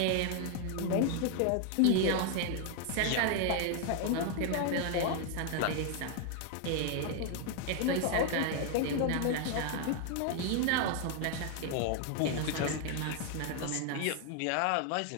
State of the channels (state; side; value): different; both; correlation 0.00